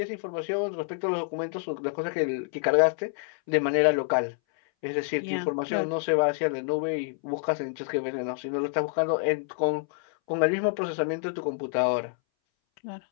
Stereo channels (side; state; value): right; silent; 60 dB below the other